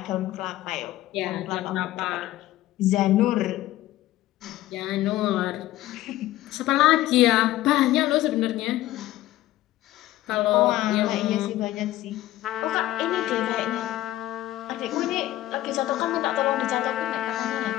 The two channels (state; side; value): quieter; right; 15.1 dB